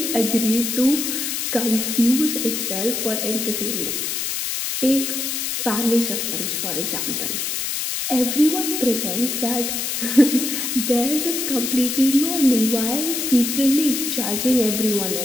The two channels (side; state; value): left; noise; hiss, 2 dB below the sound